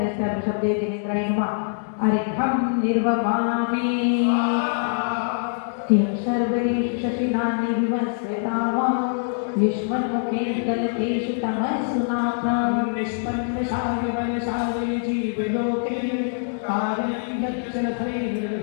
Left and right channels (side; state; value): right; silent; digital silence